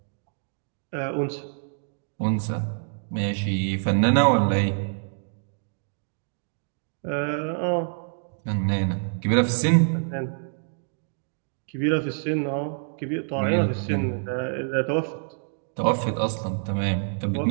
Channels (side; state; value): left; silent; digital silence